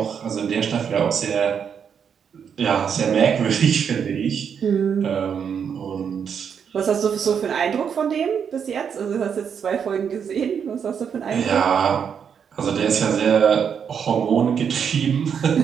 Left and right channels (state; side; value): quieter; left; 7.3 dB